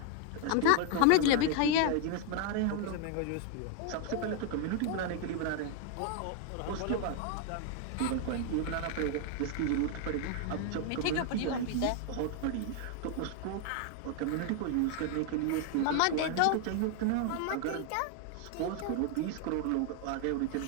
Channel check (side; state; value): both; different; correlation 0.00